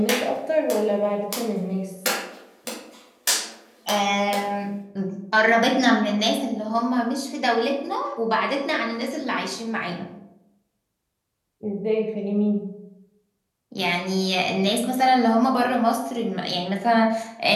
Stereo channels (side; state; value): both; identical; correlation 1.00